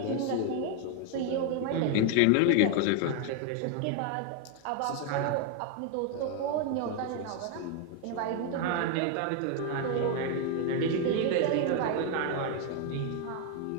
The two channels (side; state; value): both; different; correlation 0.01